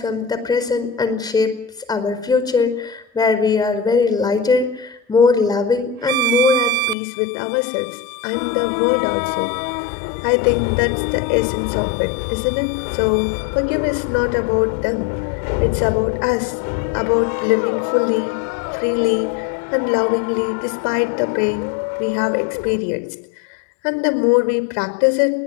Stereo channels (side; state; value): right; drops out; at 7.0 s